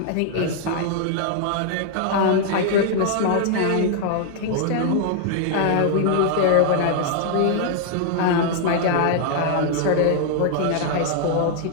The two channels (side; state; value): both; different; correlation 0.00